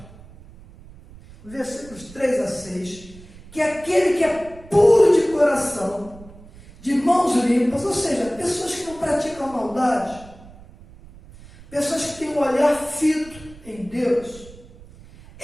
versículos 3 a 6, que aquele que é puro de coração, de mãos limpas, ou seja, pessoas que não praticam maldade, pessoas que têm um olhar fito em Deus,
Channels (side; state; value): right; noise; rumble, 20 dB below the sound